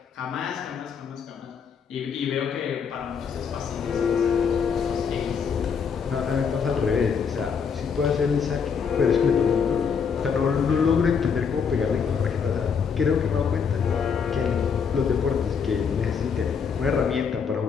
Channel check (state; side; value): quieter; right; 6.4 dB